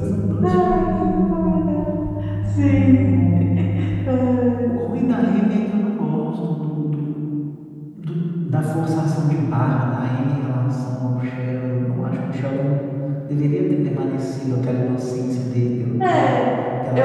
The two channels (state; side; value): identical; both; correlation 1.00